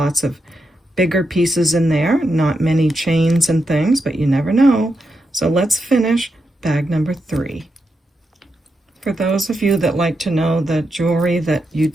of bigger pieces in there, not many chains and things, but you never know. So let's finish bag number 3. For those of you that like to know the jewelry that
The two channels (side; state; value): both; normal; correlation 0.85